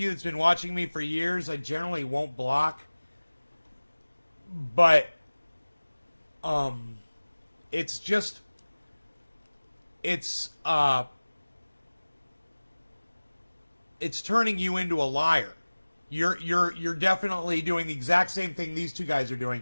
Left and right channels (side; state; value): both; inverted; correlation -1.00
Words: that's been watching me for years, I generally won't block. But it's just it's turning you into a liar. You're definitely doing the exact same thing these two guys are